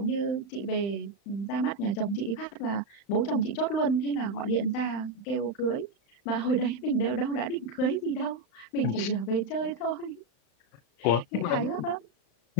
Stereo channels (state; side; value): late; right; 35 ms